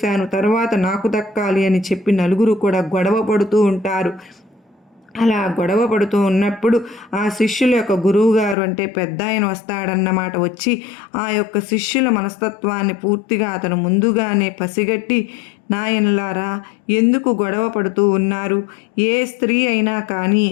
తర్వాత నాకు దక్కాలి అని చెప్పి నలుగురు కూడా గొడవ పడుతూ ఉంటారు. అలా గొడవ పడుతూ ఉన్నప్పుడు ఆ శిష్యుల యొక్క గురువుగారు అంటే పెద్ద ఆయన వస్తాడన్నమాట. వచ్చి ఆ యొక్క శిష్యుల మనస్తత్వాన్ని పూర్తిగా అతను ముందుగానే పసిగట్టి, నాయనలారా ఎందుకు గొడవ పడుతూ ఉన్నారు? ఏ స్త్రీ అయినా కానీ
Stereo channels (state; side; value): drops out; right; at 8.6 s